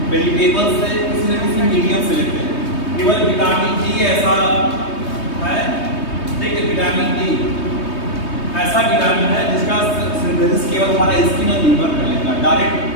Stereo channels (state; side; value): late; right; 3.2 ms